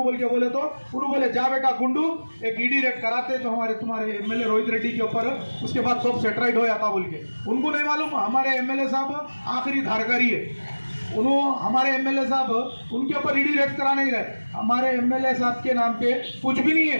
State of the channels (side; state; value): both; inverted; correlation -1.00